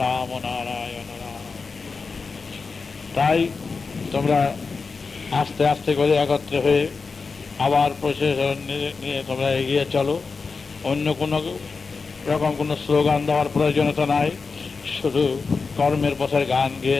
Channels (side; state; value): right; quieter; 4.6 dB